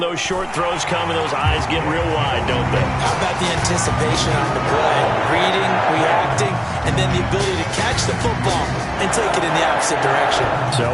those short throws come and those eyes get real wide, don't they? How about the anticipation on the play? Reading, reacting, and then the ability to catch the football and take it in the opposite direction. So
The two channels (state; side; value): identical; both; correlation 1.00